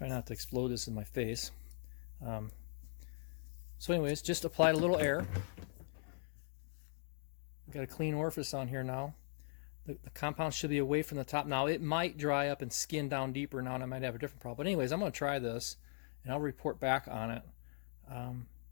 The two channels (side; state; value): right; silent; digital silence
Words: not to explode this in my face. So anyways, just applied a little air. Got a clean orifice on here now. The compound should be away from the top. Now it might dry up and skin down deeper now, and I might have a different problem. But anyways, I'm going to try this, and I'll report back on it.